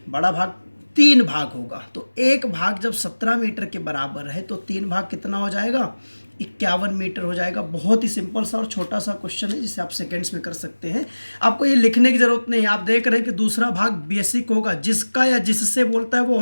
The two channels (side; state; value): both; inverted; correlation -1.00